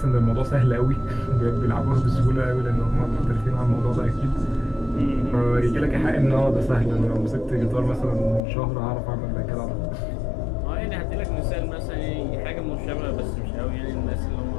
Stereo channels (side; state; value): right; drops out; at 8.4 s